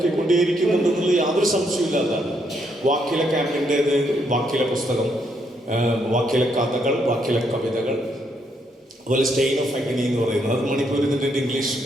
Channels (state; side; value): normal; both; correlation 0.75